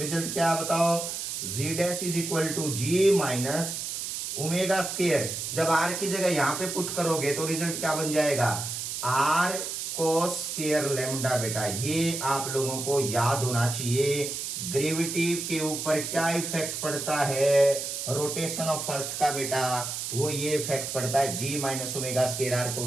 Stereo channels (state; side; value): noise; right; hiss, 4 dB below the sound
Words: क्या बताओ, g dash is equal to g minus omega square. जब r की जगह यहाँ पे पुट करोगे तो रिजल्ट क्या बन जाएगा, r कोस स्क्वायर लेमडा बेटा। ये आप लोगों को याद होना चाहिए, ग्रेविटी के ऊपर क्या इफेक्ट पड़ता है, रोटेशन ऑफ अर्थ का बेटा, वो ये इफेक्ट पड़ता है g minus omega square r